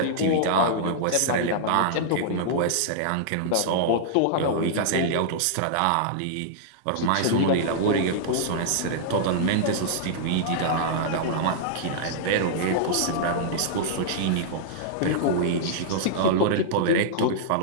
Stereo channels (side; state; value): both; different; correlation -0.02